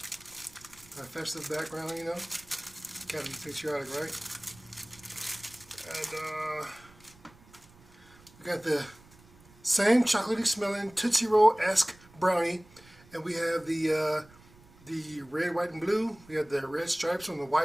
A festive background, you know. Gotta be patriotic, right? And we got the same chocolatey smelling Tootsie Roll-esque brownie. And we have the red, white, and blue. We have the red stripes on the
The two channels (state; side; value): noise; right; rumble, 25 dB below the sound